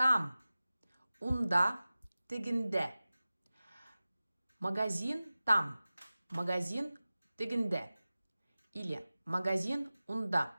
унда, тегинде. Магазин там, магазин тегинде. Или магазин унда.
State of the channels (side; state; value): both; inverted; correlation -0.97